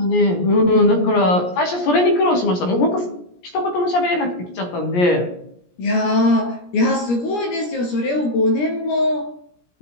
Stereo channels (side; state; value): right; late; 17 ms